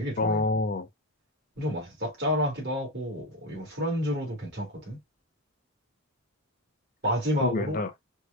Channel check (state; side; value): normal; both; correlation 0.15